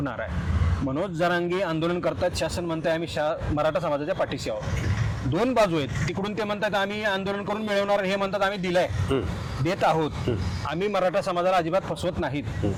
आहे? मनोज जरांगे आंदोलन करतात, शासन म्हणताय आम्ही मराठा समाजाच्या पाठीशी आहोत. 2 बाजू आहेत. तिकडून ते म्हणतात आम्ही आंदोलन करून मिळवणार, हे म्हणतात आम्ही दिलंय, देत आहोत, आम्ही मराठा समाजाला अजिबात फसवत नाहीत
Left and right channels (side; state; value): both; identical; correlation 1.00